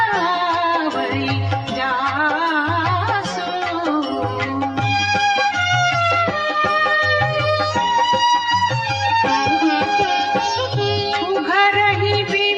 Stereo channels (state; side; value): identical; both; correlation 1.00